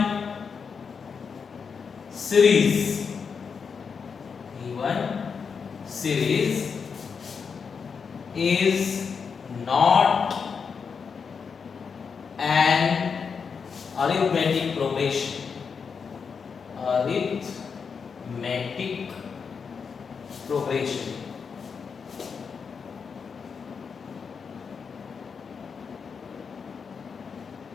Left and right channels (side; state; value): right; quieter; 5.9 dB